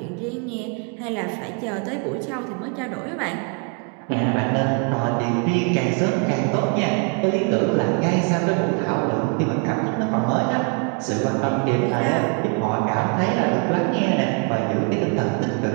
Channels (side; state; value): left; quieter; 39.4 dB